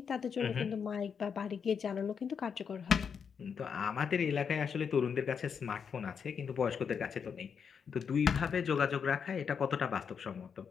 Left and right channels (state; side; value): quieter; right; 6.7 dB